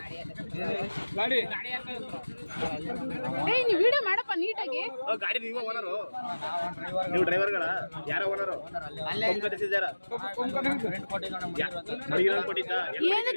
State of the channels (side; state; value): both; inverted; correlation -1.00